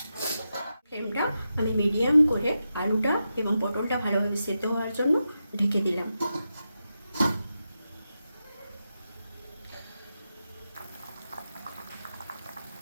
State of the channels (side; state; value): both; inverted; correlation -0.89